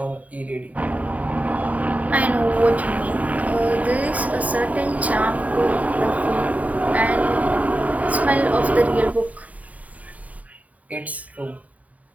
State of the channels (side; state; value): left; late; 0.071 ms